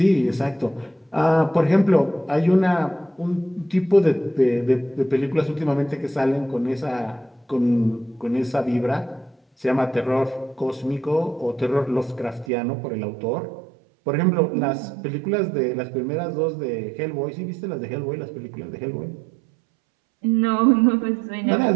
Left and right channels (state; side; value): drops out; left; at 12.5 s